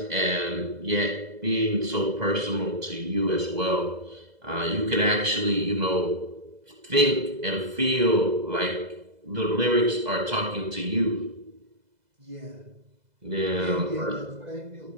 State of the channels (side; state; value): left; late; 2.0 ms